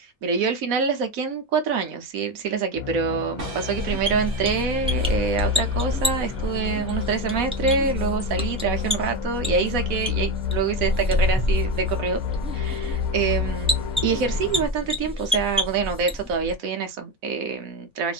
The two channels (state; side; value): normal; both; correlation 0.16